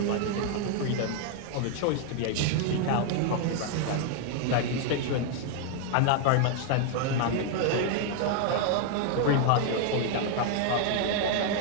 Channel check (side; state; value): both; different; correlation 0.00